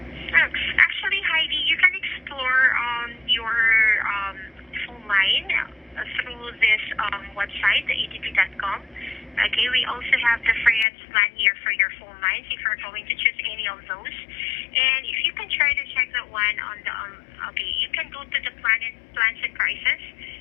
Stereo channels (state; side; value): drops out; right; at 10.9 s